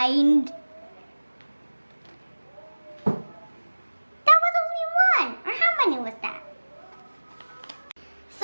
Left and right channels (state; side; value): inverted; both; correlation -1.00